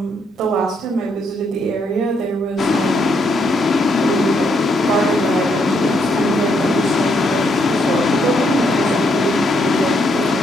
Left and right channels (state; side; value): normal; both; correlation 0.75